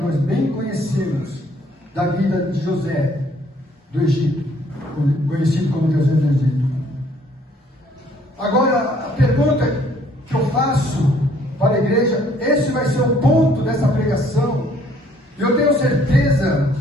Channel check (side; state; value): both; normal; correlation 0.62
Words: bem conhecemos da vida de José do Egito, conhecido como José do Egito. Agora, a pergunta que eu faço para a igreja, esse vai ser o ponto dessa pregação. Eu tenho certeza